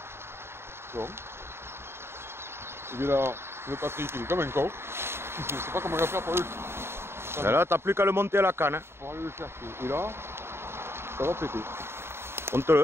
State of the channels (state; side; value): late; left; 0.12 ms